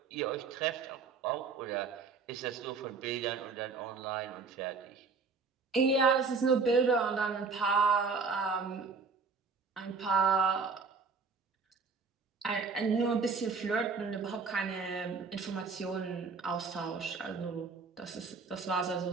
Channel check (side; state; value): left; quieter; 4.8 dB